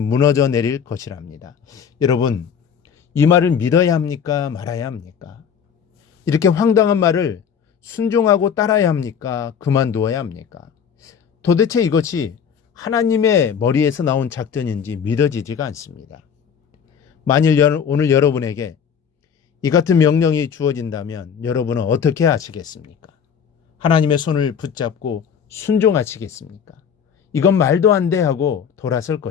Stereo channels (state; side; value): quieter; right; 7.4 dB